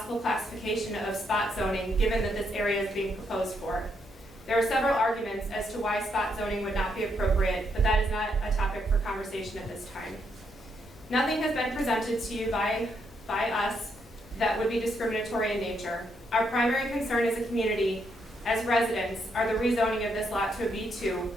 classification of spot zoning given that this area is being proposed for. There are several arguments as to why spot zoning would not be appropriate, but that is not a topic for conversation at this time. Nothing has been presented to you by us that would be discriminatory in nature. Our primary concern as a community, as residents, are the rezoning of this lot to a B2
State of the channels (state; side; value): normal; both; correlation 0.77